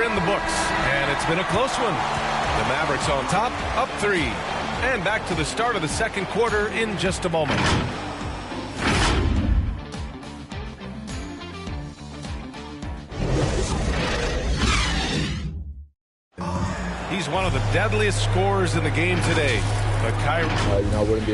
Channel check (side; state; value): both; identical; correlation 1.00